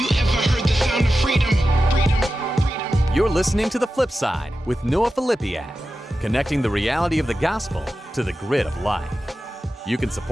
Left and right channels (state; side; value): normal; both; correlation 0.92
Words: ever heard the sound of freedom? Freedom. You're listening to The Flip Side with Noah Filipiak, connecting the reality of the gospel to the grit of life. You can